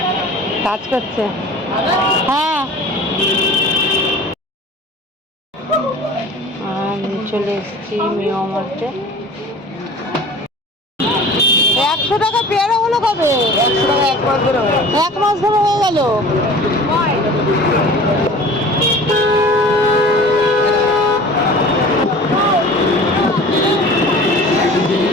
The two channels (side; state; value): both; normal; correlation 0.42